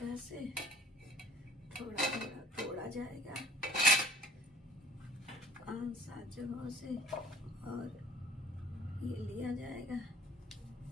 से थोड़ा थोड़ा तोड़ा जाएगा, 5-7 जगहों से, और ये लिया जाएगा,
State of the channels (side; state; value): both; normal; correlation 0.50